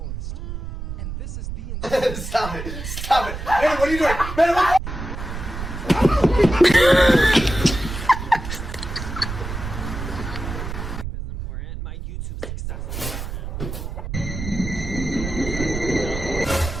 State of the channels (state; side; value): noise; right; rumble, 7 dB below the sound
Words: And this is the Stop it! Stop it! Man, what are you doing? Man, what? Is important. My YouTube success is important.